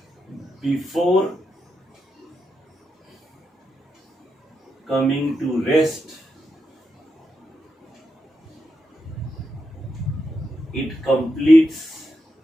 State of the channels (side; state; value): both; normal; correlation 0.85